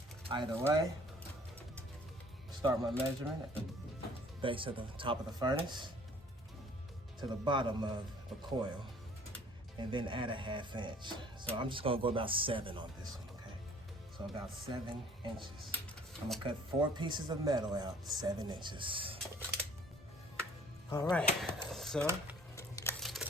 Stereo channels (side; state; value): both; normal; correlation 0.54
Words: Either way, start my measurement at the base of the top of the furnace to the bottom of the coil, and then add a 1/2 inch. So I'm just gonna go about 7 on this one, okay? So about 7 inches. I'm gonna cut 4 pieces of metal out, 7 inches. All right, so